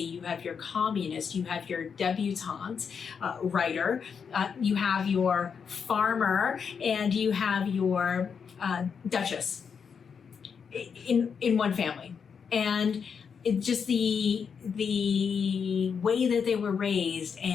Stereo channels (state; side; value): quieter; right; 6.5 dB